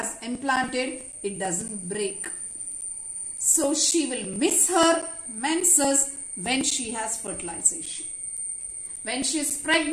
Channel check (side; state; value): both; identical; correlation 1.00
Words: implanted, it doesn't break. So she will miss her menses when she has fertilization. When she is